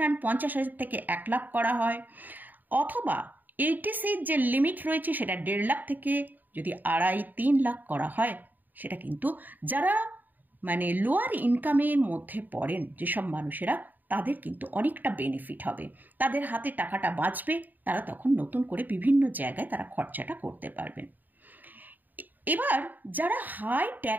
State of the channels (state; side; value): late; left; 0.087 ms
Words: 50,000 থেকে 1 লাখ করা হয়, অথবা এইটিসির যে লিমিট রয়েছে সেটা 1.5 লাখ থেকে যদি 2.5-3 লাখ করা হয়, সেটা কিন্তু যারা মানে লোয়ার ইনকামের মধ্যে পড়েন যেসব মানুষেরা, তাদের কিন্তু অনেকটা বেনিফিট হবে, তাদের হাতে টাকাটা বাঁচবে, তারা তখন নতুন করে বিভিন্ন জায়গায় তারা খরচাটা করতে পারবেন। এবার যারা হাই